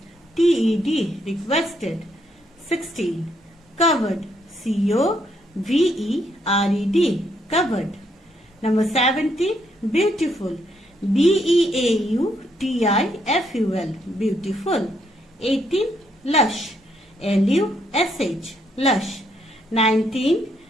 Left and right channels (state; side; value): normal; both; correlation 0.74